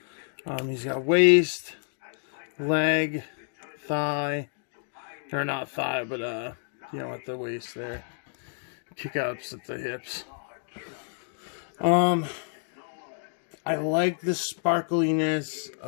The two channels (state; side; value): silent; right; 59 dB below the other